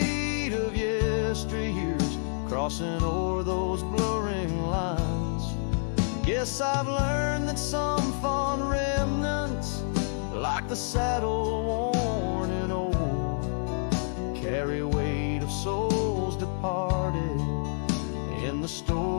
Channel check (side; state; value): right; silent; digital silence